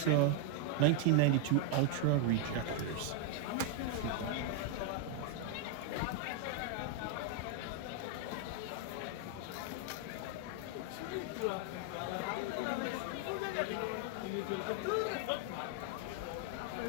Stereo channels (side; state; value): both; different; correlation 0.00